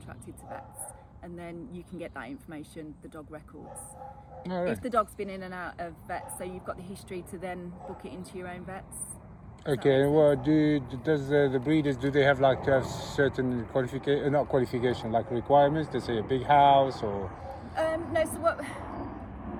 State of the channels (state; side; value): identical; both; correlation 1.00